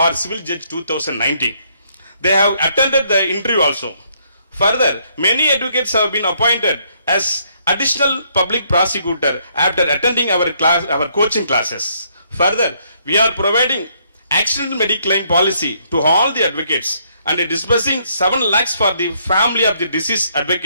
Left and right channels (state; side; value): inverted; both; correlation -0.70